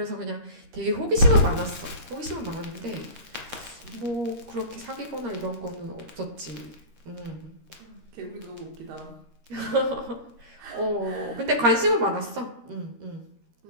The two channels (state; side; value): late; left; 13 ms